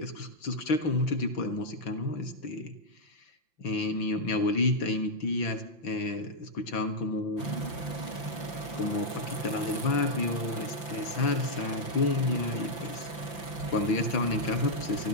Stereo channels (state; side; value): late; right; 5.8 ms